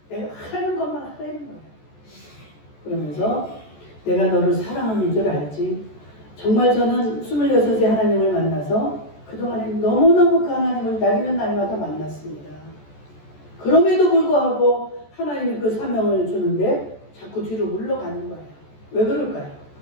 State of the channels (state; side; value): late; right; 14 ms